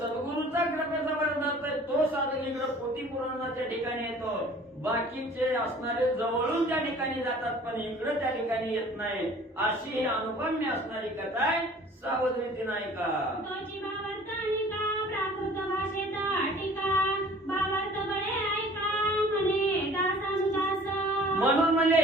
कृपेचा वरदहस्त आहे तो साधक इकडं पोथी पुराणाच्या ठिकाणी येतो. बाकीचे असणारे जवळून त्या ठिकाणी जातात पण इकडं त्या ठिकाणी येत नाही. अशी ही अनुपम्य असणारी कथा आहे. सावध रीतीनं ऐका. तोची भावार्थ निका प्राकृत भाषेत टीका, भावार्थ बळे ऐका म्हणे दासानुदास. म्हणून म्हणजे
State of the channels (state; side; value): normal; both; correlation 0.49